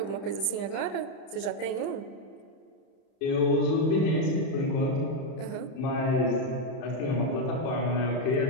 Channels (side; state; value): right; late; 30 ms